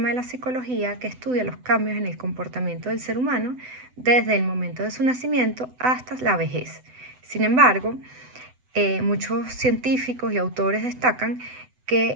de la psicología que estudia los cambios en el comportamiento del ser humano desde el momento de su nacimiento hasta la vejez. Sin embargo, muchos científicos y autores destacan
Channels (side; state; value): left; late; 7.9 ms